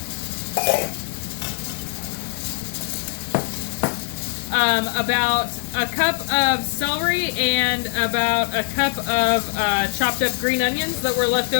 about a cup of celery, and about a cup of chopped up green onions that were left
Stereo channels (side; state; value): right; silent; 64 dB below the other